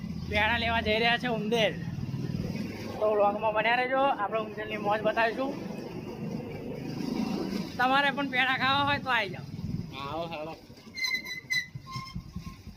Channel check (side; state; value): both; identical; correlation 1.00